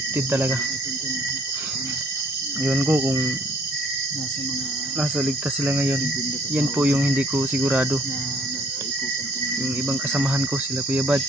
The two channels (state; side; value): normal; both; correlation 0.60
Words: talaga. Yun ko kung nasa ligtas sila ngayon, yan po yung hindi ko sigurado. Yung ibang kasamahan ko, sila Kuya Bad,